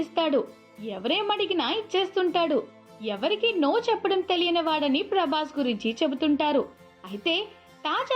ఎవరేమడిగినా ఇచ్చేస్తుంటాడు. ఎవరికి నో చెప్పడం తెలియని వాడని ప్రభాస్ గురించి చెబుతుంటారు. అయితే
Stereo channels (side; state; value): both; identical; correlation 1.00